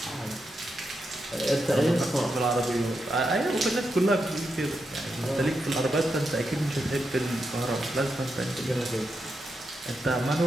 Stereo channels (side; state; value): both; normal; correlation 0.85